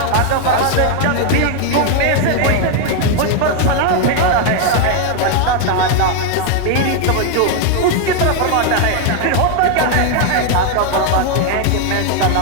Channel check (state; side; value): different; both; correlation 0.00